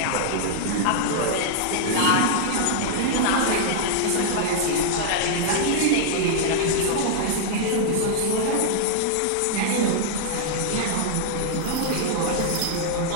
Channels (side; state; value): both; different; correlation -0.01